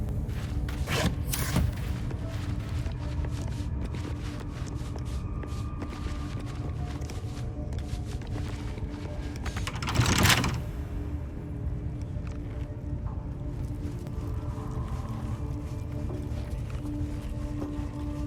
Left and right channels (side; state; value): both; identical; correlation 1.00